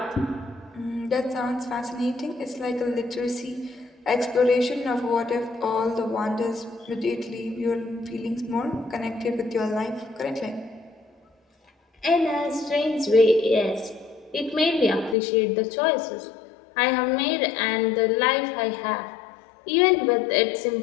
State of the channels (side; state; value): right; drops out; at 15.2 s